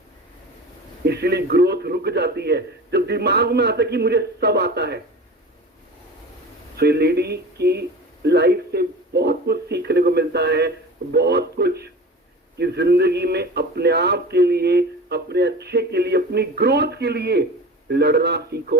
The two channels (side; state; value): both; normal; correlation 0.35